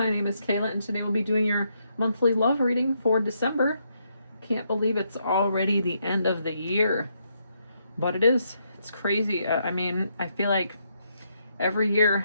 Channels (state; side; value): inverted; both; correlation -0.77